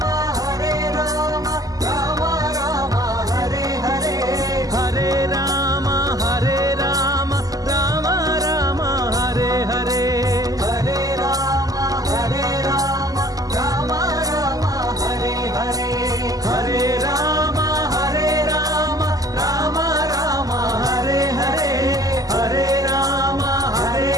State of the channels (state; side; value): late; left; 0.17 ms